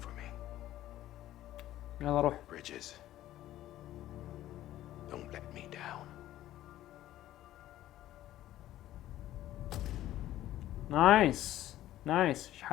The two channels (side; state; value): right; quieter; 13.9 dB